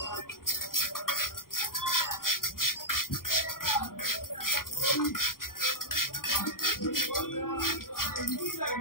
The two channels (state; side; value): late; right; 0.91 ms